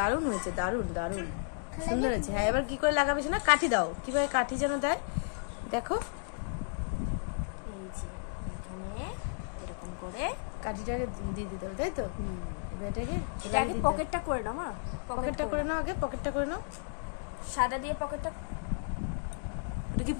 হয়েছে, দারুণ দারুণ সুন্দর হয়েছে। হ্যাঁ, এবার কি করে লাগাবে না? কাঠি দাও। কিভাবে কাঠি যেন দেয় দেখো। এই যে এখানে এরকম করে কাঠিটাকে দিয়ে দিতে হবে, তাই তো? এটাকে আগে পকেটটা করে নাও। মা, পকেটটা করে নাও, আগে পকেটটা করে নাও। সাদা দিয়ে পকেটটা। ওটা কি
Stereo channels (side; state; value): right; silent; digital silence